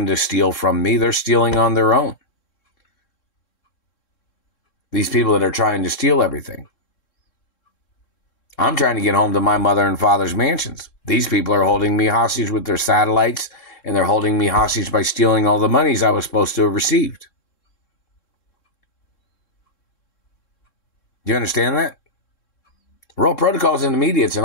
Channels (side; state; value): right; late; 3.7 ms